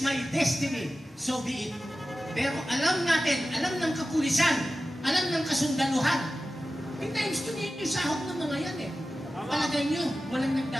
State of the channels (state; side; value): normal; both; correlation 0.94